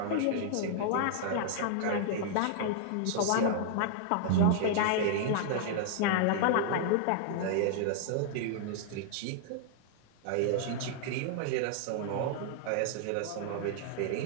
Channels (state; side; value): different; both; correlation -0.01